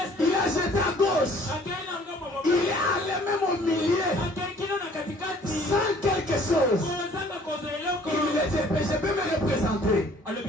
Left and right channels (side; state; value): both; normal; correlation 0.55